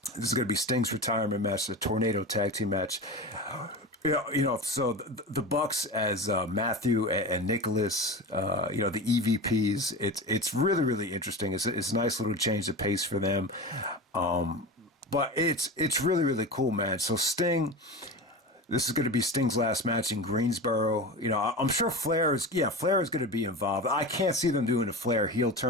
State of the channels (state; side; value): normal; both; correlation 0.27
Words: This is going to be Sting's retirement match, the Tornado Tag Team match. So the Bucks as Matthew and Nicholas, the EVPs. It's really, really interesting. It's a nice little change of pace for them. But it's really, really cool, man. So Sting, this is going to be Sting's last match in Greensboro. I'm sure Flair is going to be involved. I can't see them doing a Flair heel